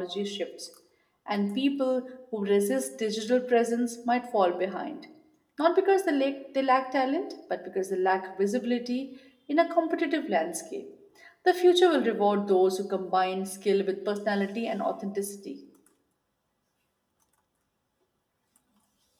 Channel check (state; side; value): identical; both; correlation 1.00